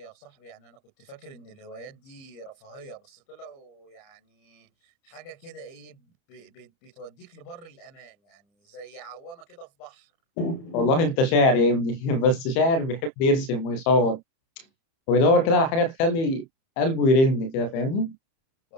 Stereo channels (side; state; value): right; late; 30 ms